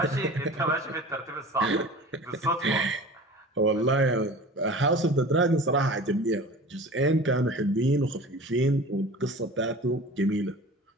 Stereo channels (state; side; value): normal; both; correlation 0.39